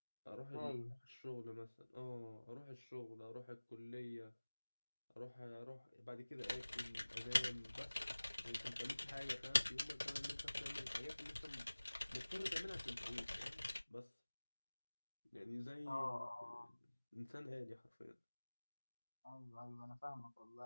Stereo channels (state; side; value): inverted; both; correlation -1.00